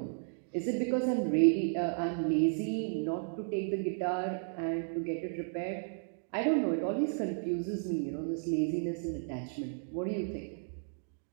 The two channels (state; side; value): silent; left; digital silence